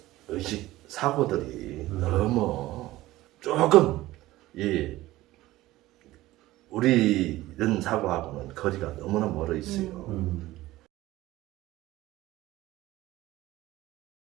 의식 사고들이 너무 조금 우리 이런 사고하고는 거리가 너무나 멀어 있어요.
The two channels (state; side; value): quieter; left; 17.0 dB